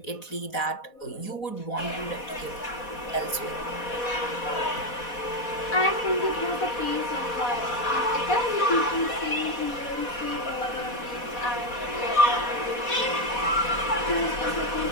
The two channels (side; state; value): right; late; 4.1 ms